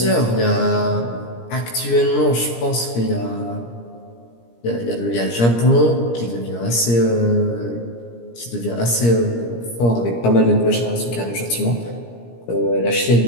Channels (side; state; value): right; late; 17 ms